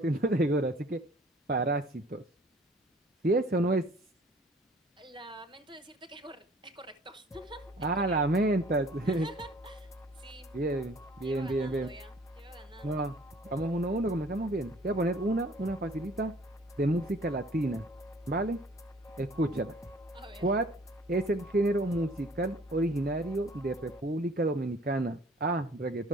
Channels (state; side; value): normal; both; correlation 0.54